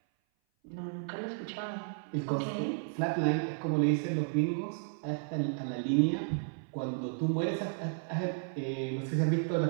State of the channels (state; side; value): silent; left; 56 dB below the other